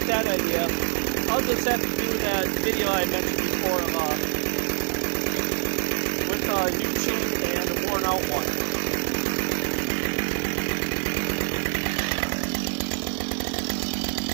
that idea. I'll just have to do that video I mentioned before with a new chain and a worn out one.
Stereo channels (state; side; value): silent; left; 61 dB below the other